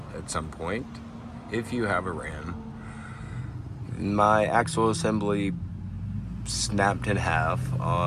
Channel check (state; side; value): identical; both; correlation 1.00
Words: at some point if you have a Ram, my axle assembly snapped in half